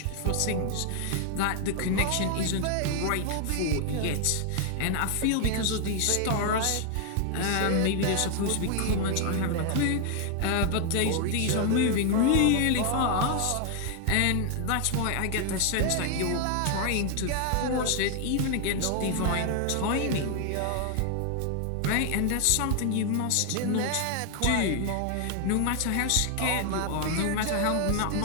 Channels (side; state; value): both; different; correlation 0.00